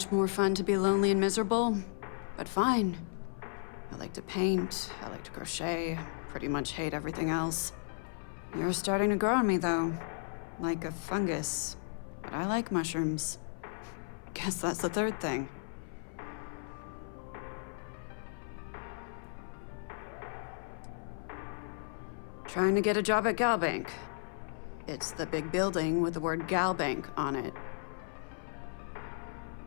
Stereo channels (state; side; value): silent; right; 55 dB below the other